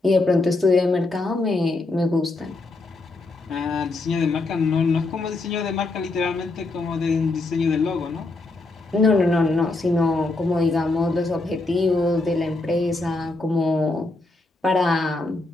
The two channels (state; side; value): quieter; right; 3.1 dB